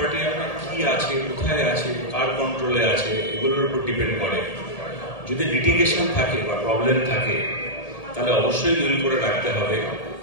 আপনার কি আছে, কোথায় আছে, কার কন্ট্রোলে আছে, এগুলোর উপর ডিপেন্ড করে। যদি লিটিগেশন থাকে বা প্রবলেম থাকে তাহলে অবশ্যই উইল করে রাখতে হবে,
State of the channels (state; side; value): late; right; 1.8 ms